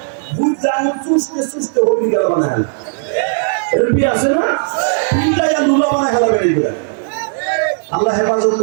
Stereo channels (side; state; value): left; silent; 66 dB below the other